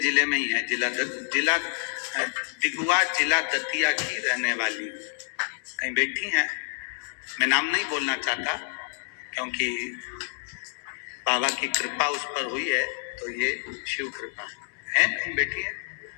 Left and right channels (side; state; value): right; silent; digital silence